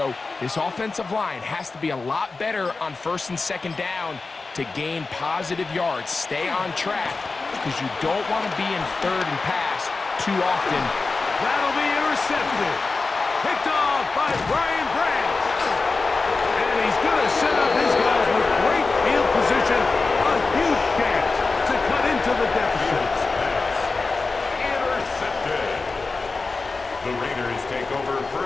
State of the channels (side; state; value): right; quieter; 3.9 dB